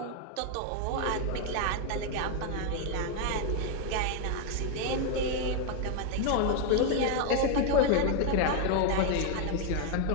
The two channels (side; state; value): both; different; correlation 0.01